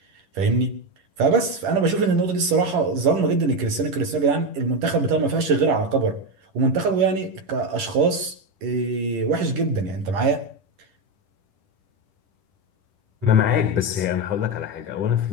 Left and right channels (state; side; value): late; left; 10 ms